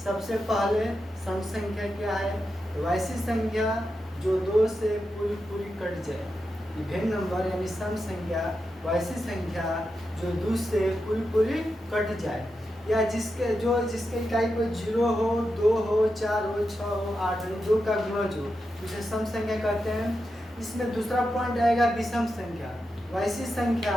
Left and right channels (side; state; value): both; normal; correlation 0.88